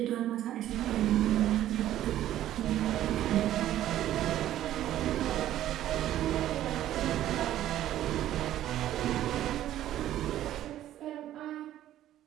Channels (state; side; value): quieter; left; 12.7 dB